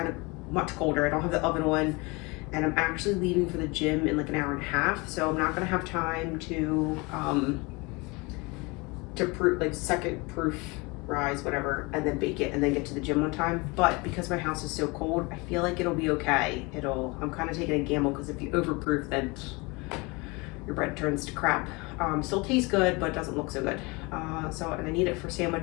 of much colder. I don't have the oven on, and I'm actually leaving for the gym in like an hour and a half. So I'm not gonna have time to proof, like second proof rise, whatever, and then bake it and then get to the gym on time. But because my house is so cold, I feel like it'll be okay. I'm kind of taking a gamble because if you overproof, then your bread turns to crap. Still tastes good, but doesn't look so good. And I need it for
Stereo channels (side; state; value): right; quieter; 26.4 dB